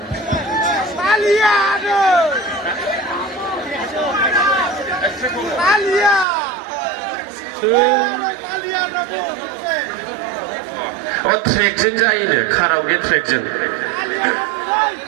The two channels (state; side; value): drops out; left; at 6.2 s